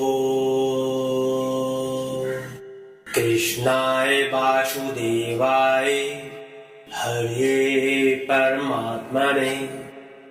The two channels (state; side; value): identical; both; correlation 1.00